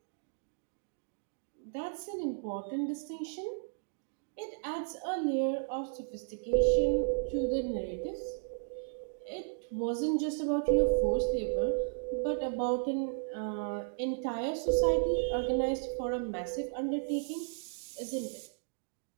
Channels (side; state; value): left; silent; digital silence